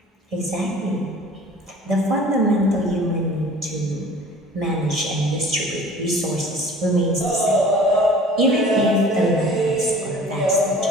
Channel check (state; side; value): normal; both; correlation 0.46